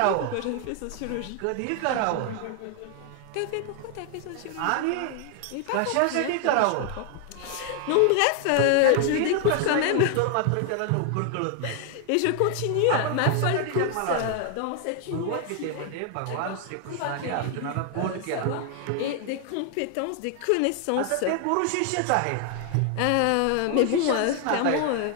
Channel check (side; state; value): both; different; correlation 0.00